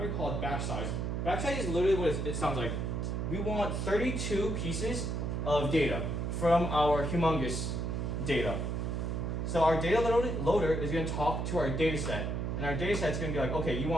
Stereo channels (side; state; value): right; noise; hum, 1 dB below the sound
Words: called batch size. Batch size is literally what it sounds like. We want 32 pieces of data from our humongous data. So our data loader is going to talk to our data set. And our data set is going to be like, okay, you